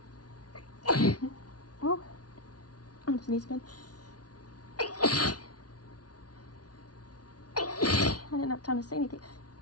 Oh, I'm gonna sneeze again. I didn't have time to say anything.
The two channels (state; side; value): late; right; 0.69 ms